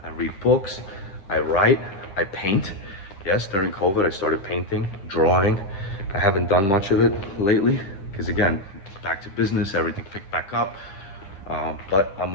I read books, I write, I paint. Yes, during COVID, I started painting, drawing. I haven't done much of it lately, because again, back to business, everything picked back up. But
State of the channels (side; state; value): right; late; 10 ms